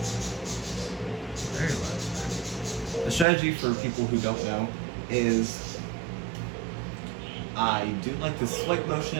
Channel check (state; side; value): drops out; left; at 3.2 s